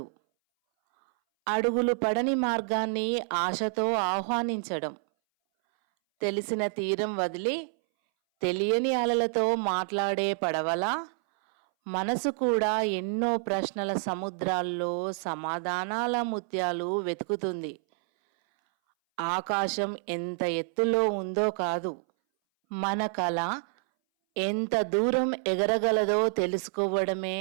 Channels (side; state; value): left; silent; 59 dB below the other